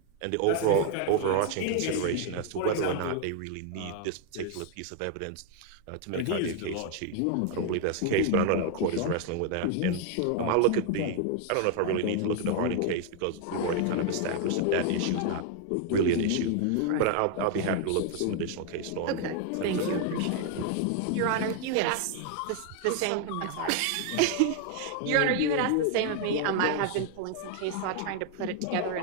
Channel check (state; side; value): different; both; correlation 0.00